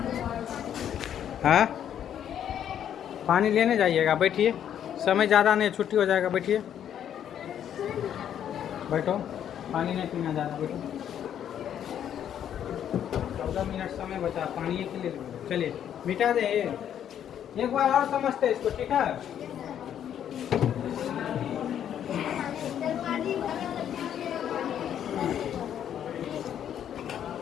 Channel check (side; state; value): right; quieter; 9.7 dB